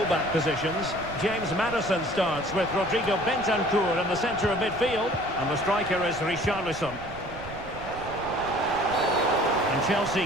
positions. James Maddison starts with Rodrigo Bentancur in the centre of midfield. And the striker is Richarlison. And Chelsea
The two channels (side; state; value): right; noise; rumble, 15 dB below the sound